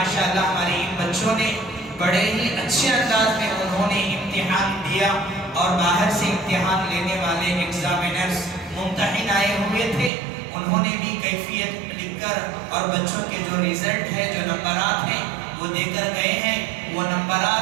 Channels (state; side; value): drops out; left; at 10.1 s